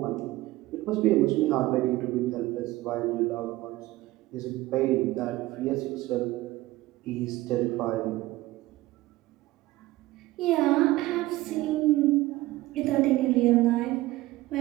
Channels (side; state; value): left; quieter; 17.9 dB